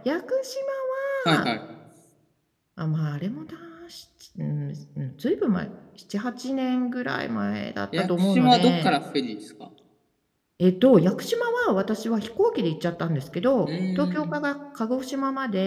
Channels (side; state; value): both; identical; correlation 1.00